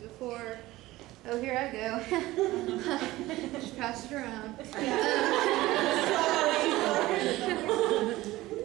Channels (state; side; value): quieter; left; 17.8 dB